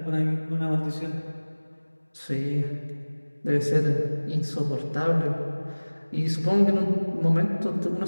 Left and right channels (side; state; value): both; inverted; correlation -1.00